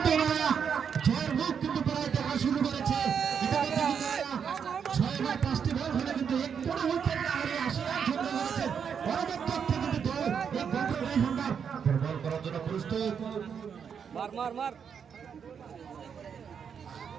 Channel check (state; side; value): quieter; left; 7.1 dB